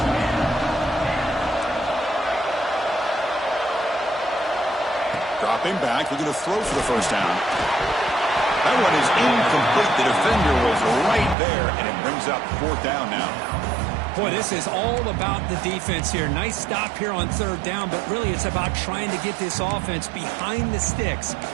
Dropping back, looking to throw for the first down. That one is incomplete. The defender was right there, and it brings up 4th down now. Boy, this is all about the defense here. Nice stop here on 3rd down, but really it's about trying to get this offense behind the sticks.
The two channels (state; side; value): drops out; left; at 11.4 s